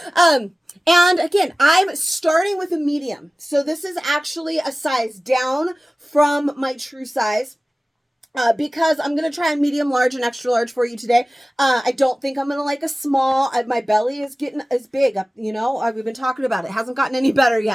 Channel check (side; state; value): both; normal; correlation 0.97